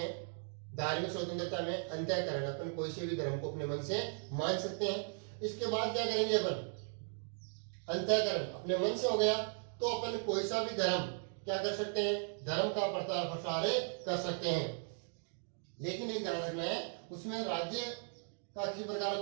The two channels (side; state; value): left; silent; 53 dB below the other